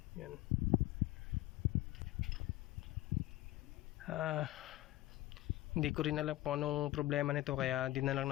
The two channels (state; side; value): quieter; right; 16.5 dB